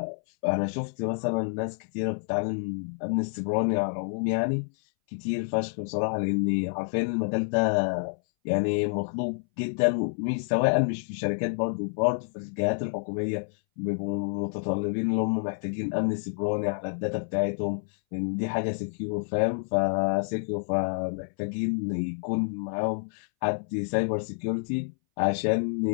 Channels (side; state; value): right; silent; 59 dB below the other